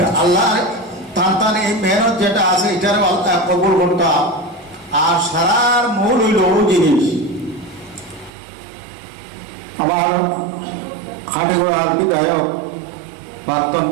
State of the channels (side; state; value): left; drops out; at 8.3 s